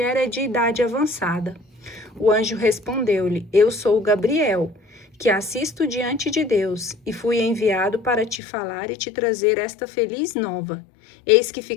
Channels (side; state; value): right; drops out; at 8.4 s